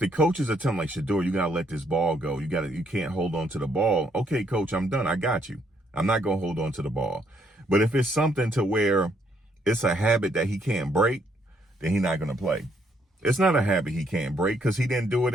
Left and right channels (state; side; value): normal; both; correlation 0.71